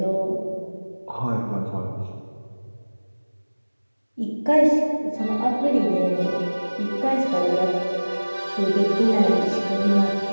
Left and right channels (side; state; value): both; inverted; correlation -1.00